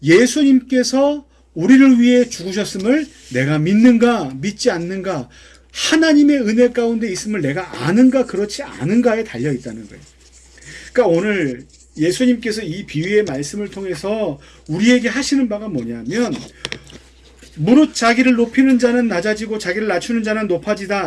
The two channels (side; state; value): both; identical; correlation 1.00